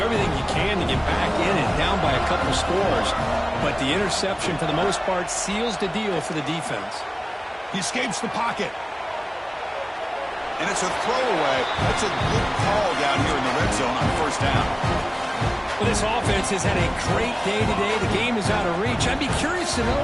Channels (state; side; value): identical; both; correlation 1.00